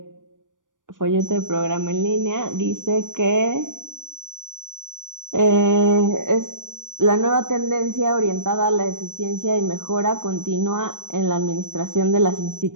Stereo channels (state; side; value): late; left; 0.88 ms